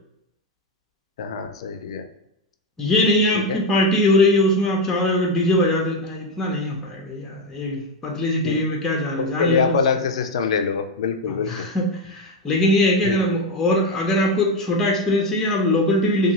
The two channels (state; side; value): normal; both; correlation 0.11